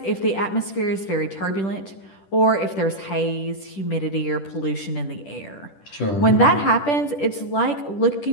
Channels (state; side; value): late; right; 10 ms